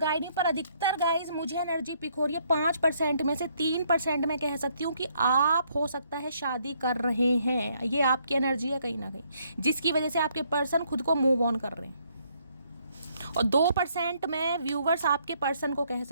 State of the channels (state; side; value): inverted; both; correlation -0.70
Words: मी। पर अधिकतर गाइज मुझे एनर्जी पिक हो रही है 5% में से 3% मैं कह सकती हूँ कि आप हो सकता है शादी कर रहे हैं, ये आपकी एनर्जी है कहीं ना कहीं, जिसकी वजह से आपके पर्सन खुद को मूव ऑन कर रहे हैं। और 2% मैं व्यूवर्स आपके पर्सन को कह